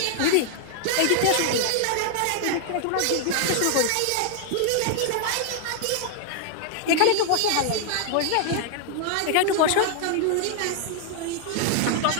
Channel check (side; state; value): both; different; correlation 0.00